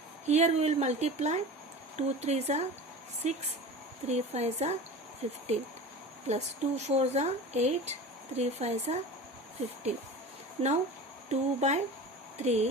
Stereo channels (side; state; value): both; normal; correlation 0.34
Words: Here we will multiply 2 3s are 6, 3 5s are 15 plus 2 4s are 8, 3 5s are 15. Now 2 by